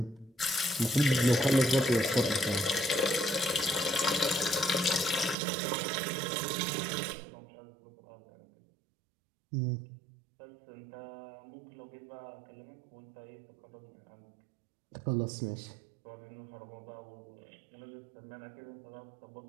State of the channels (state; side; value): drops out; left; at 5.4 s